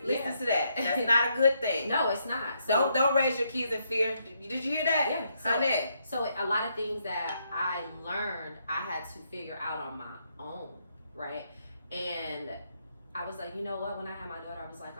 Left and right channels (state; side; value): inverted; both; correlation -0.76